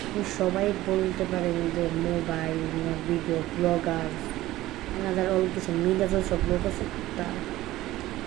সবাই বলতে পারেন যে মোবাইল ভিডিও ব্লগার এনাদের অল কিছু মিডিয়া সব লোক আছে, তা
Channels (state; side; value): quieter; left; 16.2 dB